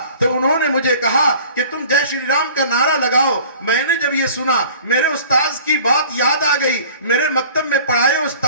تو انہوں نے مجھے کہا کہ تم جے شری رام کا نعرہ لگاؤ. میں نے جب یہ سنا میرے استاذ کی بات یاد آ گئی, میرے مکتب میں پڑھائے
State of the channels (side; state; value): both; inverted; correlation -0.47